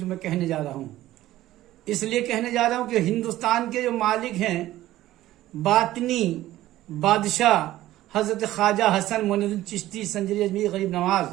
میں کہنے جا رہا ہوں۔ اس لیے کہنے جا رہا ہوں کہ ہندوستان کے جو مالک ہیں، باطنی بادشاہ حضرت خواجہ حسن معین الدین چشتی سنجری اجمیری غریب نواز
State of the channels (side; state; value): left; quieter; 15.0 dB